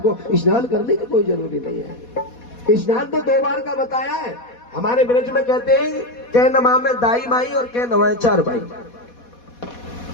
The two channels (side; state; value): right; late; 4.2 ms